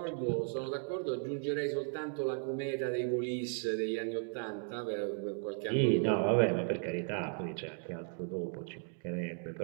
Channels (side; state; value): left; silent; 54 dB below the other